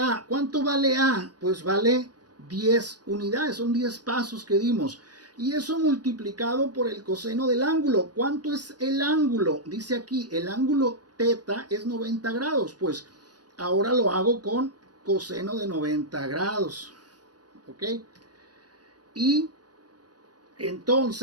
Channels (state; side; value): late; left; 0.69 ms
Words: ¿Cuánto vale A? Pues vale 10 unidades, son 10 pasos que dimos. Y eso multiplicado por el coseno del ángulo. ¿Cuánto es el ángulo? Dice aquí, el ángulo teta es 90 grados. Pues ahora lo hago con coseno de 90 grados. ¿Ok? Y